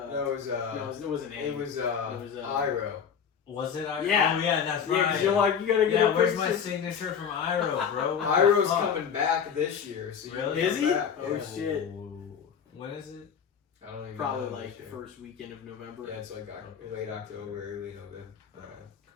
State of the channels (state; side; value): quieter; right; 7.3 dB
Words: it was no, it wasn't Aang. it was Iroh. Was it? Yeah. Oh yeah, that's Yeah, right. because you're like, you gotta get Yeah, a where's picture. my signature from Iroh, bro? What the Iroh's fuck? coming back this year. So you Really? can Is come he? back. Oh, Yeah. shit. Ooh. When is it? I don't even Probably know like this the year. first weekend of November. Yeah, it's like late October, early November.